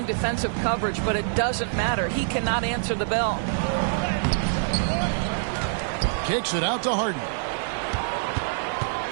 defensive coverage, but it doesn't matter. He cannot answer the bell. Kicks it out to Harden.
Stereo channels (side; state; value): left; silent; digital silence